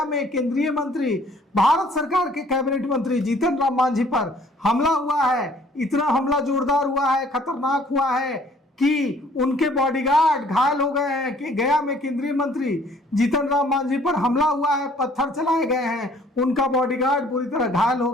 में केंद्रीय मंत्री, भारत सरकार के कैबिनेट मंत्री जीतन राम मांझी पर हमला हुआ है। इतना हमला जोरदार हुआ है, खतरनाक हुआ है कि उनके बॉडीगार्ड घायल हो गए हैं। कि गया में केंद्रीय मंत्री जीतन राम मांझी पर हमला हुआ है, पत्थर चलाए गए हैं, उनका बॉडीगार्ड बुरी तरह घायल हो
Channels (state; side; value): normal; both; correlation 0.58